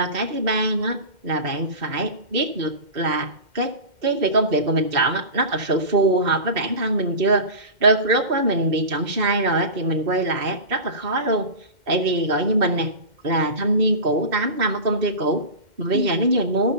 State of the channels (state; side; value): late; left; 2.1 ms